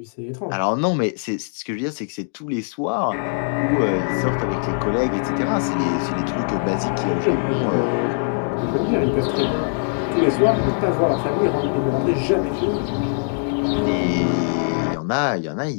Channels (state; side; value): silent; right; 64 dB below the other